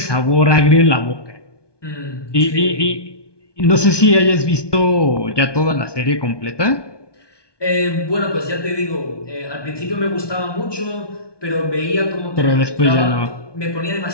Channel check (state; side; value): late; right; 1.2 ms